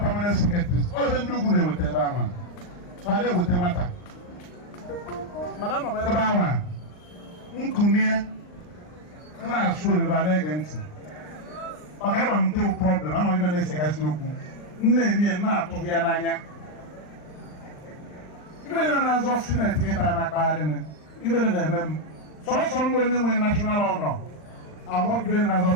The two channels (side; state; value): right; late; 39 ms